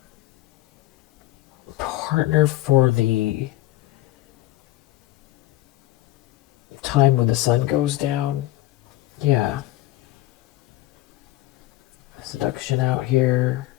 partner for the time when the sun goes down. Yeah. Seduction out here.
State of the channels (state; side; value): quieter; right; 16.9 dB